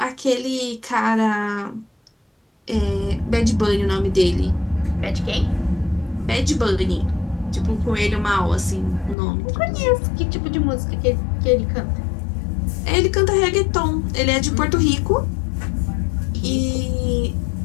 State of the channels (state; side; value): drops out; right; at 9.2 s